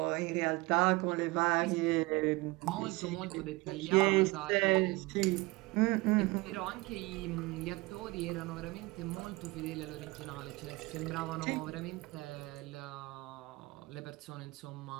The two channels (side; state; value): left; quieter; 22.9 dB